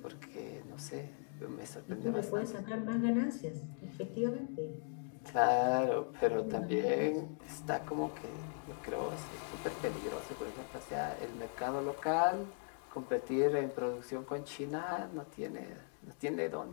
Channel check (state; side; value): silent; right; 52 dB below the other